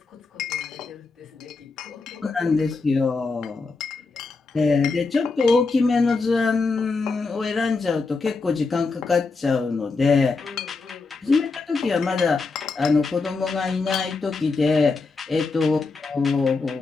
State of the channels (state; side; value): quieter; right; 4.1 dB